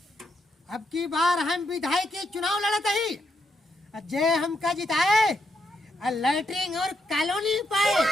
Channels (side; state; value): both; normal; correlation 0.79